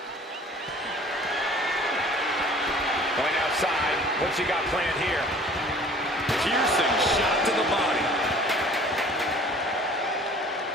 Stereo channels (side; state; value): both; normal; correlation 0.49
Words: Going outside. What's he got planned here? Piercing shot to the body.